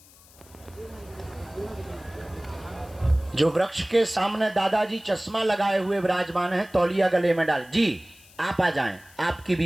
जो वृक्ष के सामने दादाजी चश्मा लगाए हुए विराजमान है, तौलिया गले में डाल जी, आप आ जाएं, आपकी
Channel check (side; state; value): left; noise; hiss, 25 dB below the sound